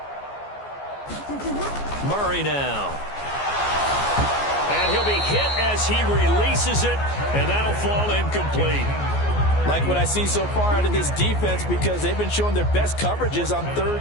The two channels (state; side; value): late; right; 14 ms